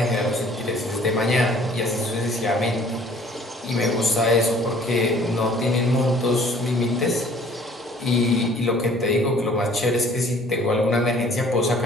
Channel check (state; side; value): normal; both; correlation 0.54